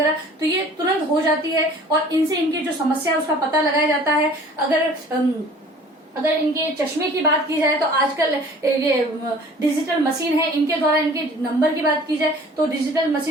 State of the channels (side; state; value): both; normal; correlation 0.49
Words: तो ये तुरंत हो जाती है और इनसे इनकी जो समस्या है उसका पता लगाया जाता है। अगर इनके चश्मे की बात की जाए तो आजकल ये डिजिटल मशीन है, इनके द्वारा इनके नंबर की बात की जाए तो डिजिटल